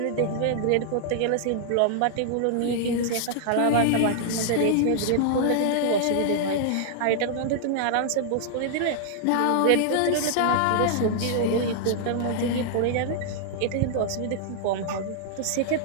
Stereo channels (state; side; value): different; both; correlation -0.01